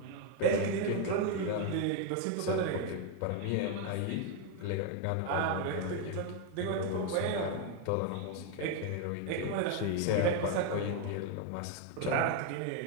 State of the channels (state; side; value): different; both; correlation 0.01